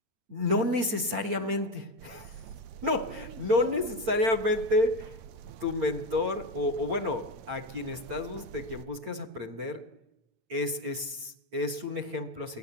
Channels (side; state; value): left; late; 8.8 ms